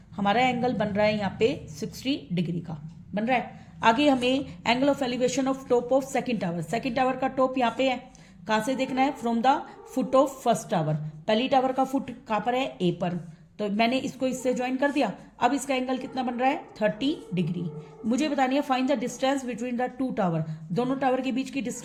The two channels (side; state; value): both; identical; correlation 1.00